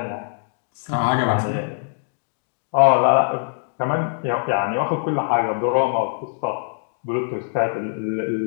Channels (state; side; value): silent; right; digital silence